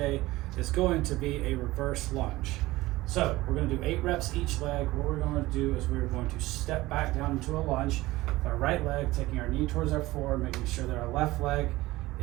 is going to be a reverse lunge. So we're going to do 8 reps each leg. What we're going to do is we're going to step back down into a lunge with our right leg, taking our knee towards our floor, making sure that our left leg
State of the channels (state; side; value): quieter; left; 18.6 dB